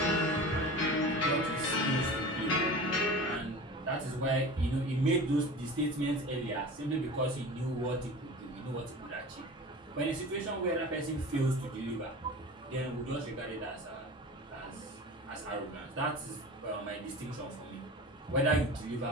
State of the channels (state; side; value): normal; both; correlation 0.35